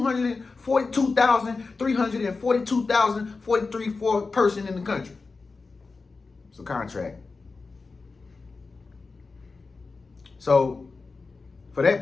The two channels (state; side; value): quieter; right; 4.1 dB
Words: person in the country. It's a contract. So, for that